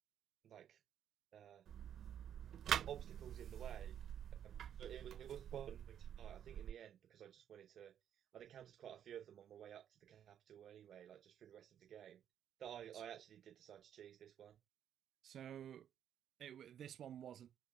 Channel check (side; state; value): left; quieter; 9.7 dB